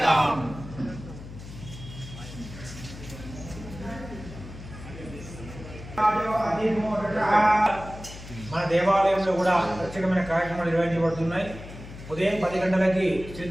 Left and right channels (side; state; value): left; noise; hum, 14 dB below the sound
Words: మన దేవాలయంలో కూడా ప్రత్యేకమైన కార్యక్రమాలు నిర్వహించబడుతున్నాయి. ఉదయం 10 గంటలకి